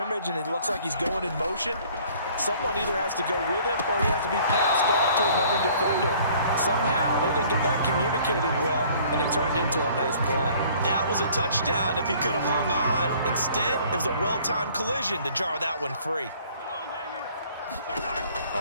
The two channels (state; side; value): inverted; both; correlation -0.55